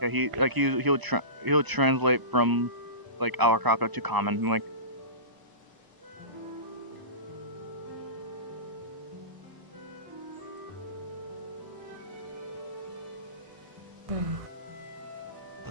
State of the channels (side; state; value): left; late; 1.0 ms